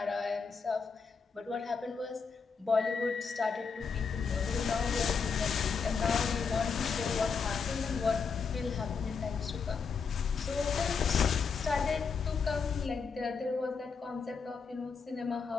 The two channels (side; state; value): right; quieter; 5.4 dB